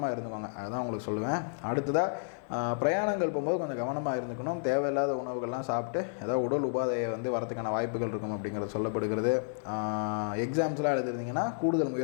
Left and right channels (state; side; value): silent; right; 57 dB below the other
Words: இருந்துக்கோங்க, அதுதான் உங்களுக்கு சொல்லுவேன். அடுத்ததாக பிரயாணங்கள் போகும்போது கொஞ்சம் கவனமாக இருந்துக்கணும். தேவையில்லாத உணவுகள்லாம் சாப்பிட்டு ஏதாவது உடல் உபாதையை வந்து வரதுக்கான வாய்ப்புகள் இருக்கும் அப்படிங்கிறது சொல்லப்படுகிறது. எக்ஸாம்ஸ்லாம் எழுதிருந்தீங்கன்னா கூடுதல்